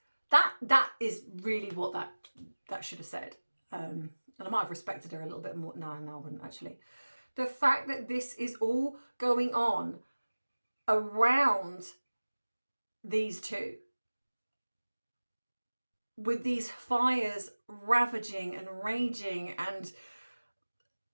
That is really what that should have said. And I might have respected her a little bit more. No, I wouldn't actually. The fact that this is all going on around these two, with these fires ravaging and raging, and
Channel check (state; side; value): inverted; both; correlation -1.00